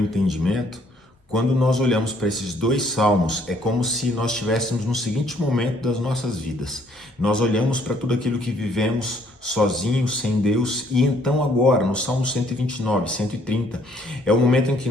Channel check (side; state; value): both; normal; correlation 0.64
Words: quando nós olhamos para esses dois salmos, é como se nós estivéssemos no seguinte momento das nossas vidas. Nós olhamos para tudo aquilo que vivemos sozinhos, sem Deus, e então agora, no Salmo 129, 130, é o momento em que